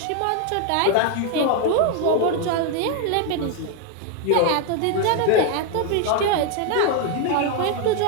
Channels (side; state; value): both; different; correlation 0.01